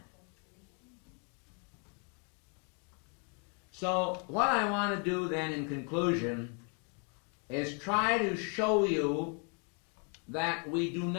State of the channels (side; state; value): right; quieter; 38.8 dB